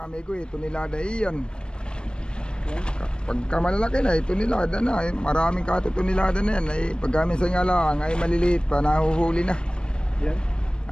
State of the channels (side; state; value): right; late; 0.053 ms